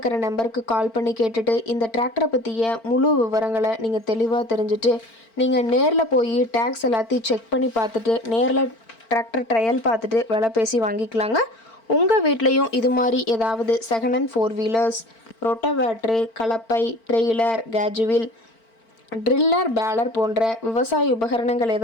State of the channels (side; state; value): right; late; 4.4 ms